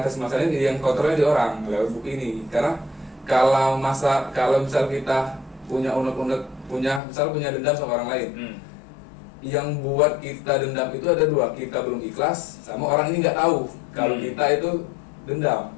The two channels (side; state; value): right; drops out; at 7.0 s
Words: masalahnya yang kontrolnya di orang lewat buku ini. Karena kalau misal kita punya punya dendam sama orang lain, yang buat kita dendam itu ada dua, kita belum ikhlas sama orang ini nggak tahu kalau kita itu dendam.